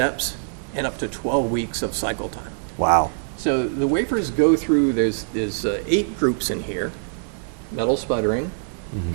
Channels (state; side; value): silent; left; digital silence